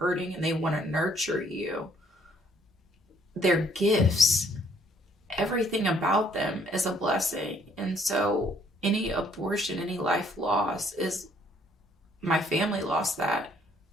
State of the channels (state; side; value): normal; both; correlation 0.64